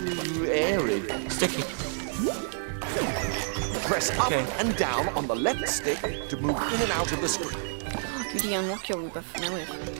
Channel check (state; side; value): silent; left; digital silence